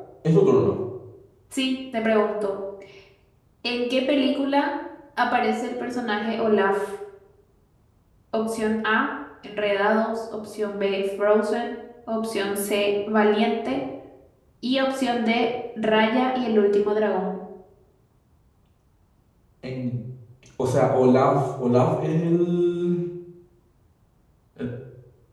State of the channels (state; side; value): identical; both; correlation 1.00